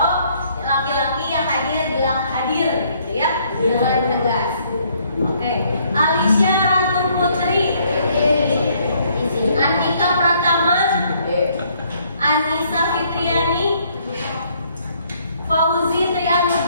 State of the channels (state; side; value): inverted; both; correlation -0.66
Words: laki-laki yang hadir bilang hadir gitu ya dengan tegas. Oke. Alicia Ratu Putri, Antika Pratama, Anissa Fitriani, Fauzi